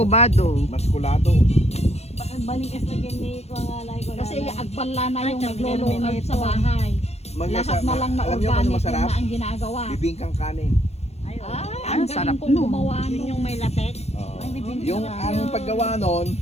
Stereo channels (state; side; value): late; right; 0.31 ms